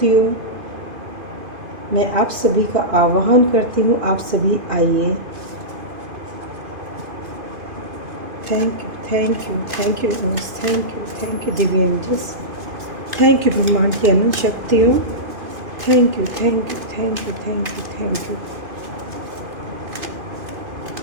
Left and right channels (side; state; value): left; late; 2.5 ms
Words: मैं आप सभी का आह्वान करती हूँ। आप सभी आइए। Thank you, thank you, thank you, thank you Divya angels, thank you ब्रह्मांड की अनंत शक्तियों, thank you, thank you, thank you, thank you, thank you.